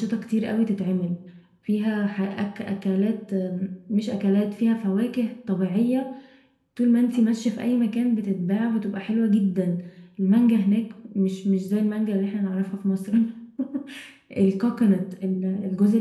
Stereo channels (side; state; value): both; identical; correlation 1.00